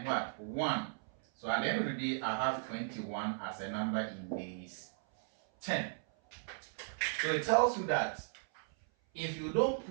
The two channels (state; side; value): silent; left; 54 dB below the other